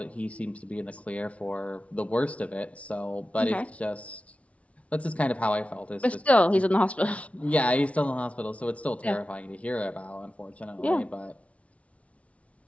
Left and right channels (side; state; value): right; late; 0.064 ms